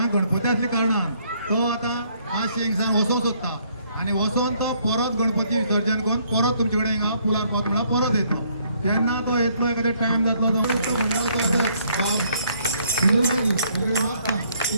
गणपती असल्या कारणान तो आता हा शेंगसांग वसोंक सोदता आणि वसोन तो परत गणपती विसर्जन करून परत तुमचे कडेन हिंगा फुलार पावता म्हणल्यार परत येता केन्ना तो येतलो एखादे टायम जातलो तो बागी वेगळे वाचता की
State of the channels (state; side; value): inverted; both; correlation -0.66